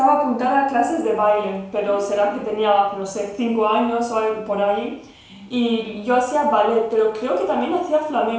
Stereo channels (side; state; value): both; identical; correlation 1.00